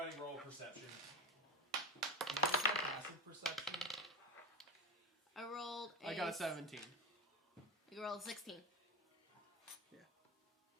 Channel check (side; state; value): both; normal; correlation 0.24